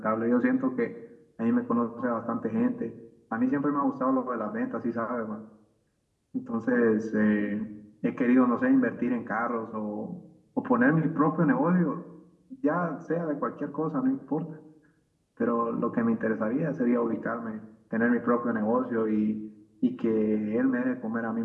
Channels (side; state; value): both; identical; correlation 1.00